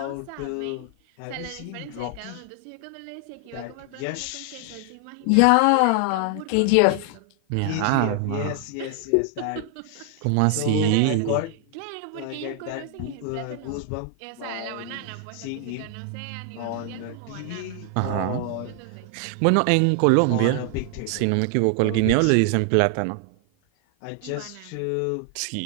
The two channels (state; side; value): different; both; correlation 0.00